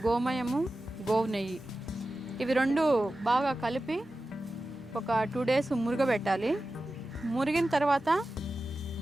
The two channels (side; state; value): both; normal; correlation 0.94